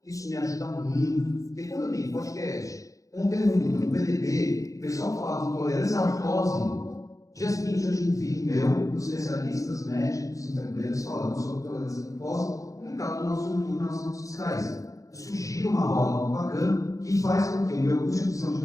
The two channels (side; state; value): right; late; 0.16 ms